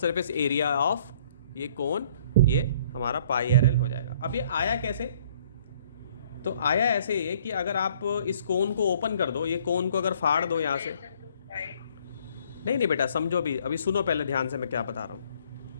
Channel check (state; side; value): inverted; both; correlation -0.59